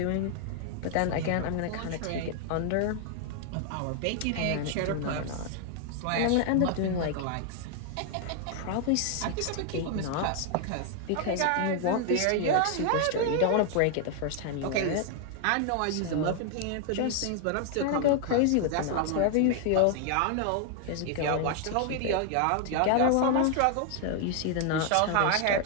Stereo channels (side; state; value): both; different; correlation 0.00